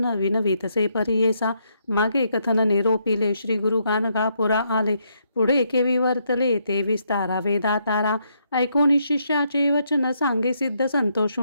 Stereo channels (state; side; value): inverted; both; correlation -0.76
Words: विनवीतसे परियेसा. मागे कथन निरोपिले श्री गुरु गाणगापुरा आले पुढे केवी वर्तले ते विस्तारा वेदातारा. ऐकोनी शिष्याचे वचन सांगे सिद्ध